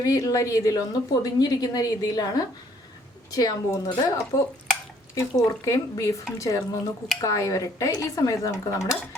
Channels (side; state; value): both; normal; correlation 0.63